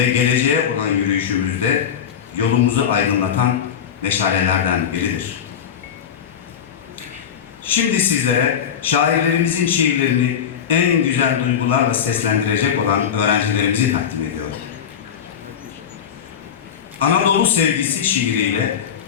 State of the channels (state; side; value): quieter; right; 8.3 dB